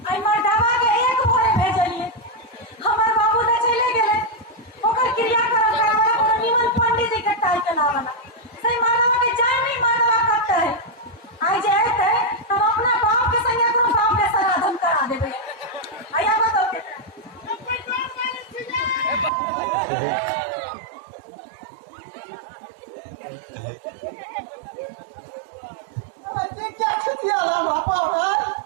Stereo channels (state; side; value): drops out; left; at 19.3 s